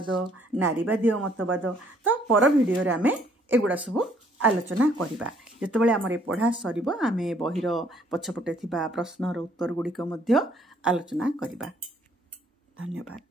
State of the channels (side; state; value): both; normal; correlation 0.64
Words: नारीवादी मतवाद। तो पर भिडियो रे आमे एगुडा सब आलोचना करिबा। जेतेबेले हमर पढ़ा सरिबो आमे बहिर पछपटे थिबा प्रश्नर उत्तर गुडिक मध्य आलोचना करिबा। धन्यवाद।